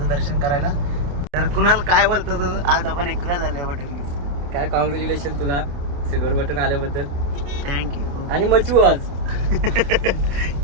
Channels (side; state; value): left; late; 28 ms